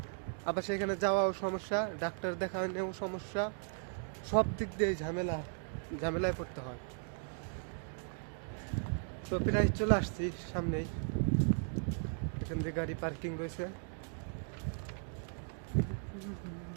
আবার সেখানে যাওয়াও সমস্যা, ডাক্তার দেখানোও সমস্যা। সব দিক দিয়ে ঝামেলায় পড়তে হয়। তো প্রায় চলে আসছি সামনেই, এখান থেকে গাড়ি পার্কিং রয়েছে।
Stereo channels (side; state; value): left; silent; 53 dB below the other